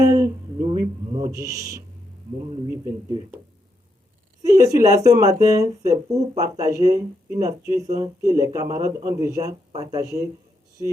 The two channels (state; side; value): normal; both; correlation 0.80